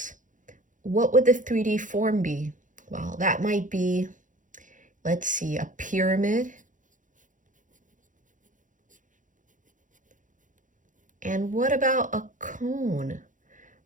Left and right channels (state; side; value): late; left; 0.37 ms